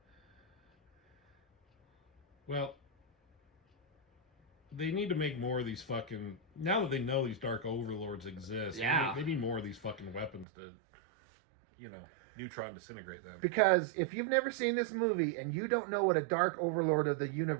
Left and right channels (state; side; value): drops out; left; at 10.5 s